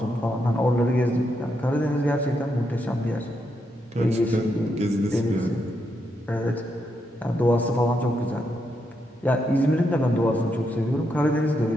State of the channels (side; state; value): both; normal; correlation 0.81